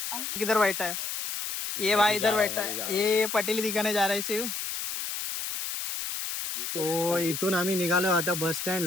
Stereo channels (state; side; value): noise; left; hiss, 5 dB below the sound